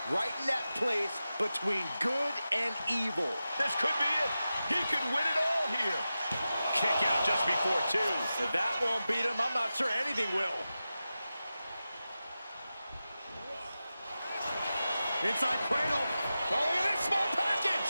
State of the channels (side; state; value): both; inverted; correlation -0.93